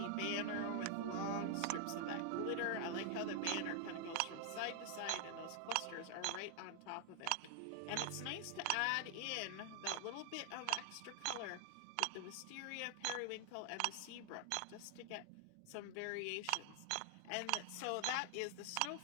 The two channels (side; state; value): both; different; correlation 0.00